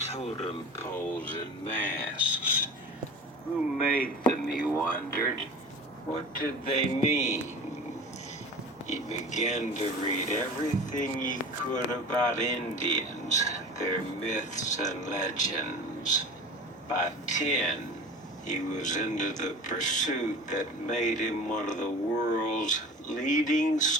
poles and masks. Who made them, he wondered? What did they mean? He began to read everything he could about Indians, their myths and legends. By 10, he was into the pursuit that made him one of the world's leading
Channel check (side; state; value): both; normal; correlation 0.37